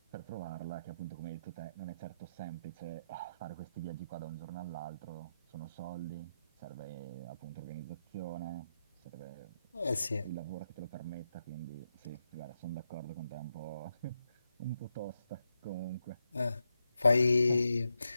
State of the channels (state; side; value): inverted; both; correlation -0.85